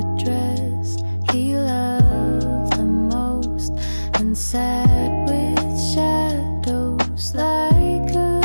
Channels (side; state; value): both; inverted; correlation -1.00